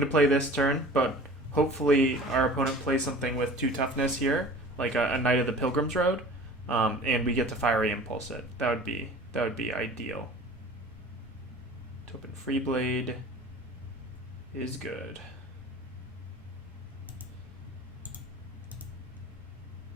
to play this turn, but hopefully our opponent plays something with 2 toughness here, like a Knight of the Pilgrim's Road, and we get to Fiery Impulse it. That would be ideal. Topin Free Blade is good.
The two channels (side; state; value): both; normal; correlation 0.42